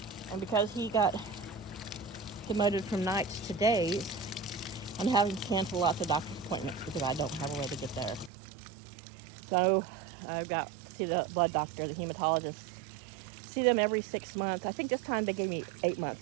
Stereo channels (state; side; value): drops out; left; at 8.3 s